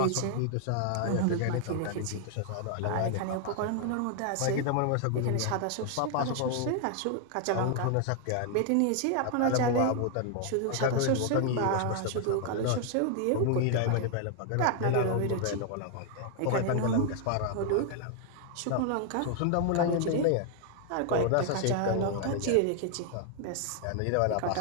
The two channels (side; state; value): both; different; correlation 0.00